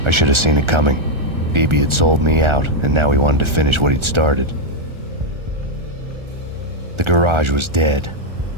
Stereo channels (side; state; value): left; late; 1.4 ms